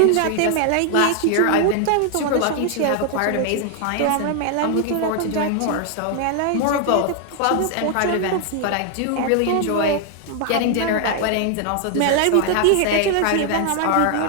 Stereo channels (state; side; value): different; both; correlation 0.00